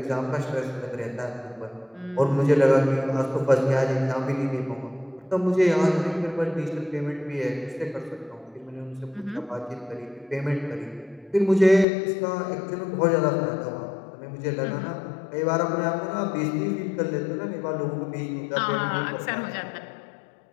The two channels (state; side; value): drops out; right; at 11.9 s